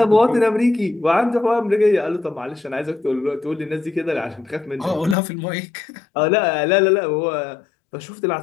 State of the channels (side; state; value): right; drops out; at 5.2 s